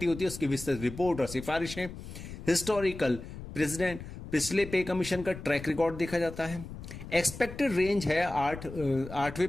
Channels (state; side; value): noise; left; rumble, 12 dB below the sound